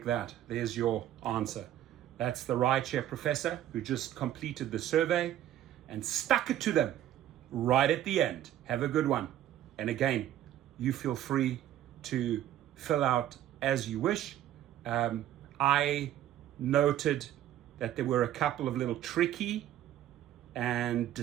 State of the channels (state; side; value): quieter; left; 12.2 dB